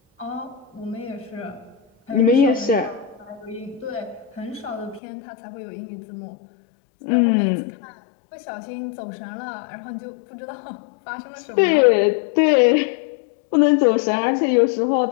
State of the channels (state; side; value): drops out; right; at 5.0 s